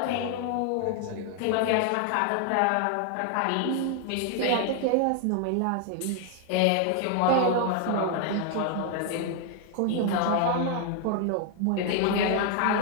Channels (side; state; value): both; different; correlation 0.00